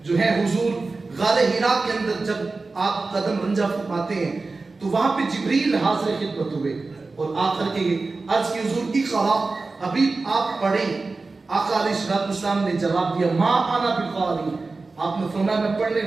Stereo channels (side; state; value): left; quieter; 3.7 dB